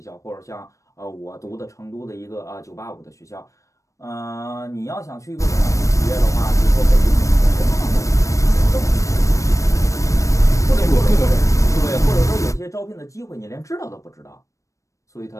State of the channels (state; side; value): late; right; 0.15 ms